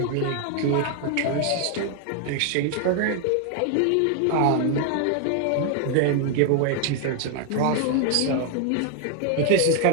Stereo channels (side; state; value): both; different; correlation 0.00